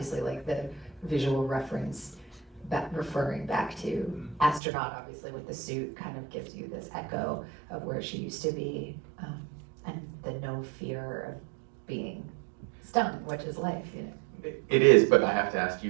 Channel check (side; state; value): left; drops out; at 4.6 s